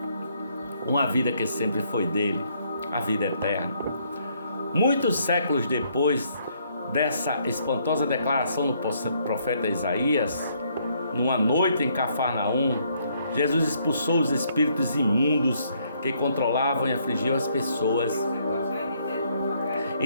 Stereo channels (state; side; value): inverted; both; correlation -0.70